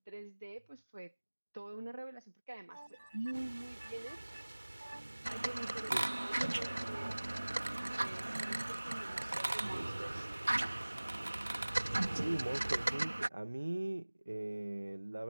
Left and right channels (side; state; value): both; inverted; correlation -1.00